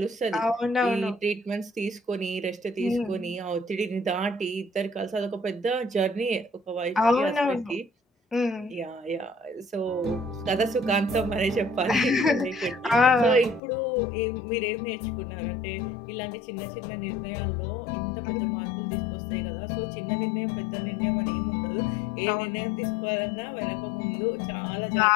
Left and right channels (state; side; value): drops out; right; at 13.6 s